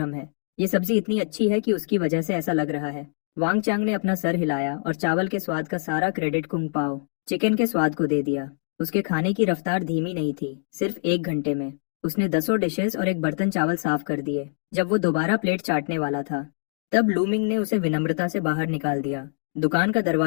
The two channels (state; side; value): silent; right; digital silence